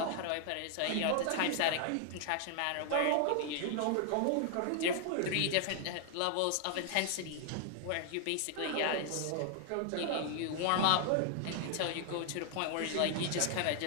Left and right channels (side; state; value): both; different; correlation 0.00